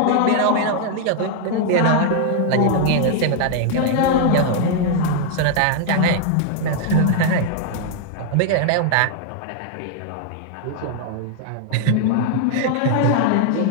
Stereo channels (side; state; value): both; different; correlation 0.00